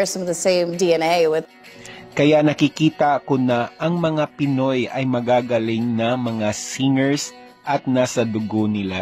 some of the same DNA with. Kaya nakikita ko na ang mga Pinoy ay magagaling na mga singers at nasa dugo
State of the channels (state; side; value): identical; both; correlation 1.00